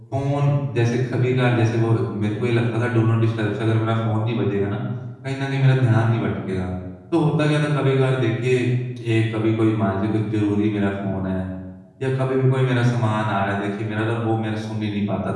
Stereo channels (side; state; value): both; identical; correlation 1.00